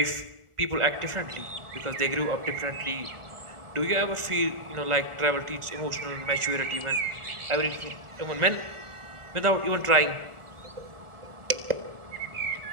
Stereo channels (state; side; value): late; left; 1.4 ms